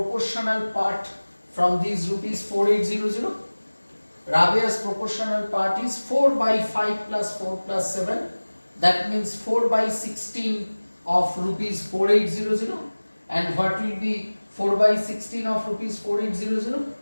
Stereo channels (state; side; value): inverted; both; correlation -1.00